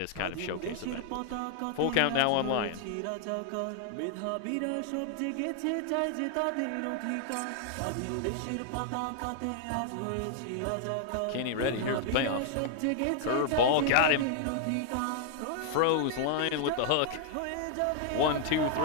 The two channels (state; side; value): different; both; correlation 0.00